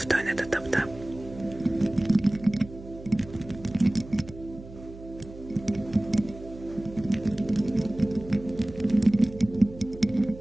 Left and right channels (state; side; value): noise; right; hum, 16 dB below the sound